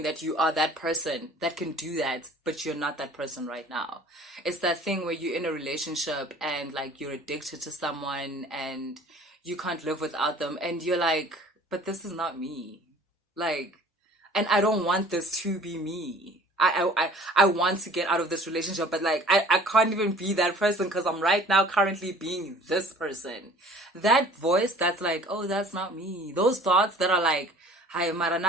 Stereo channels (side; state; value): both; normal; correlation 0.49